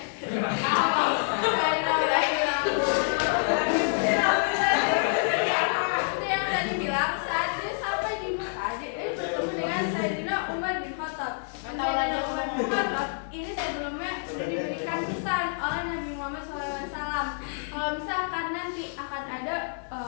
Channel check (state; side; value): silent; right; 56 dB below the other